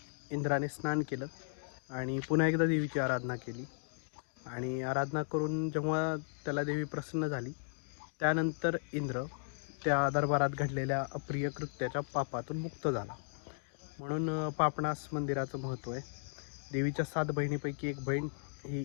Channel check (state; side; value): silent; right; digital silence